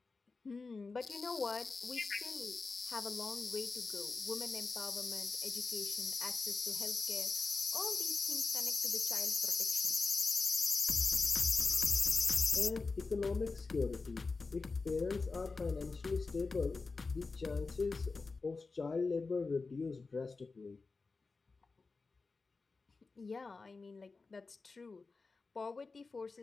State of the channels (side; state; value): right; quieter; 4.1 dB